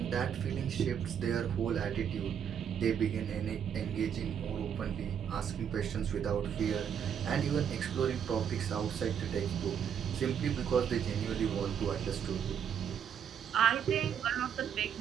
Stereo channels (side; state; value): left; quieter; 8.3 dB